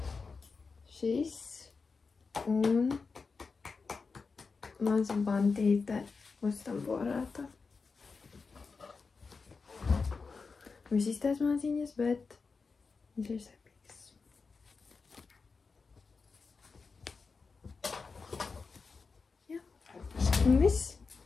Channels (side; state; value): right; quieter; 4.7 dB